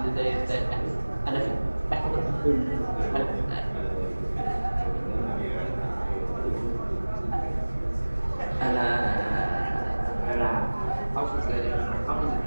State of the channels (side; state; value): both; inverted; correlation -1.00